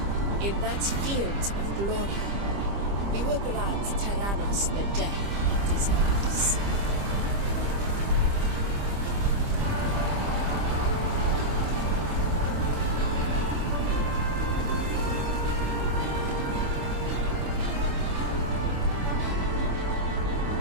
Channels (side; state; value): left; late; 25 ms